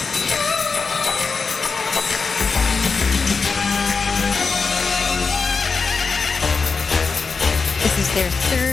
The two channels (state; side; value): quieter; right; 4.8 dB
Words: This is their